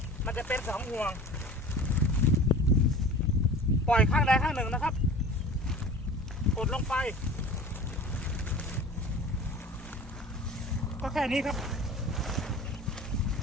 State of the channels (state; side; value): normal; both; correlation 0.40